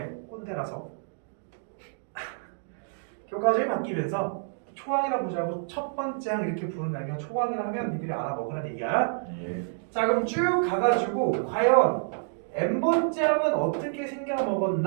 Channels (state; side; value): silent; left; digital silence